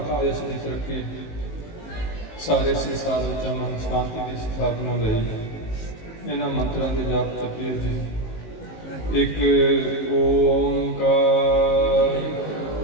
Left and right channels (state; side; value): late; right; 19 ms